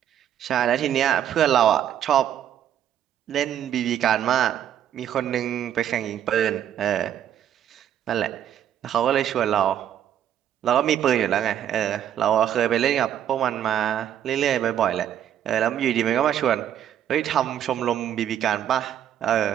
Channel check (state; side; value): quieter; left; 10.3 dB